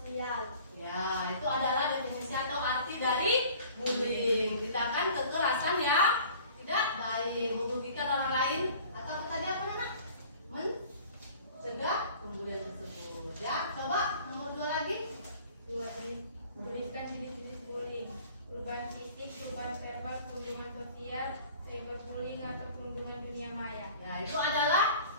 Ya, itu adalah definisi atau arti dari bullying. Tindakan kekerasan ya tidak baik, merugikan orang lain atau tadi apa Nak? Mencegah pembulian tersebut. Ya, coba nomor 2 lagi. Tuliskan jenis-jenis bullying: perubahan fisik, perubahan verbal, perundungan sosial, cyberbullying atau perundungan dunia maya. Ya, itu adalah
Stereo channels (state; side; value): inverted; both; correlation -0.48